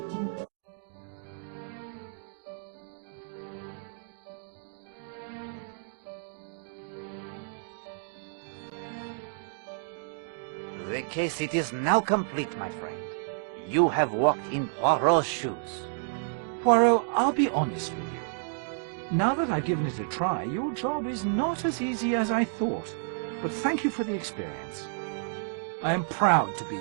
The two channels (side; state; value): left; silent; digital silence